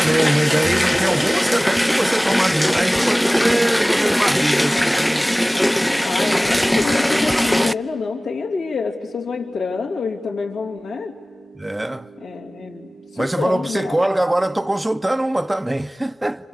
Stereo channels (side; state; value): both; normal; correlation 0.98